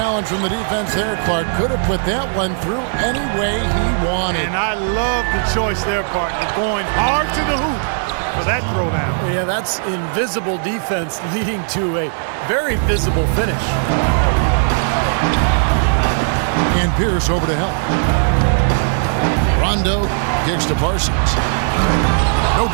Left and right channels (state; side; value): silent; left; digital silence